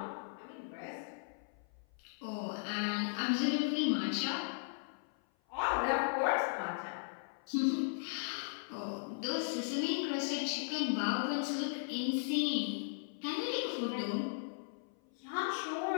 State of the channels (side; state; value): right; silent; 53 dB below the other